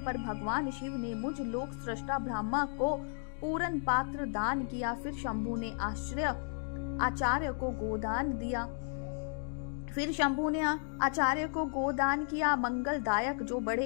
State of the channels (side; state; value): right; silent; 55 dB below the other